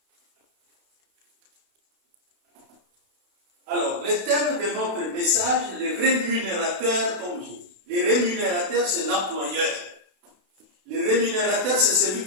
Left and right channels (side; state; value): left; late; 32 ms